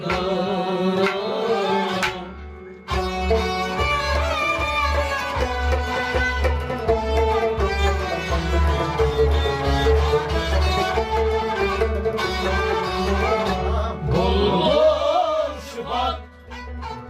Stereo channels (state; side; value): identical; both; correlation 1.00